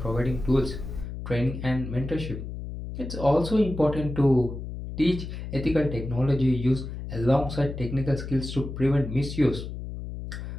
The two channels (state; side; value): noise; left; hum, 8 dB below the sound